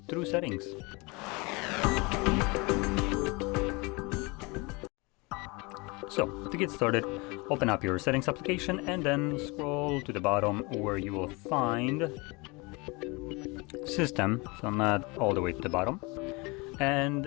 through settings. So, to get started, open up your settings application and then scroll to the bottom where you will find System, so not all the way to the bottom.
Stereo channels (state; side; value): quieter; right; 26.8 dB